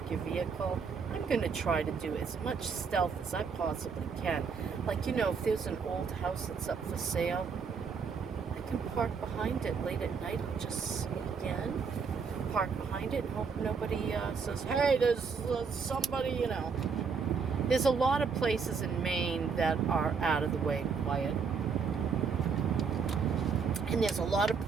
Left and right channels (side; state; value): left; quieter; 5.6 dB